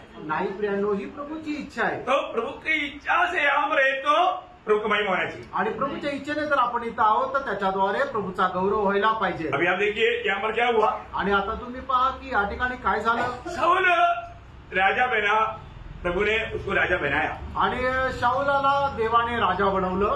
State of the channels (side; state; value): both; identical; correlation 1.00